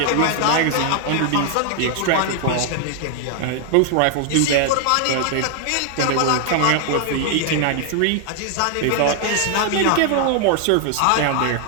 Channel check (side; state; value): both; different; correlation 0.00